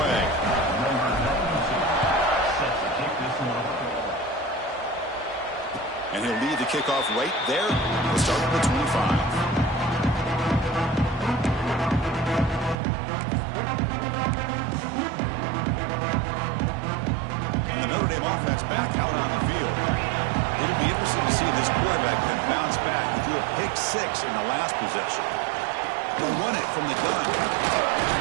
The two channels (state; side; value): drops out; left; at 12.8 s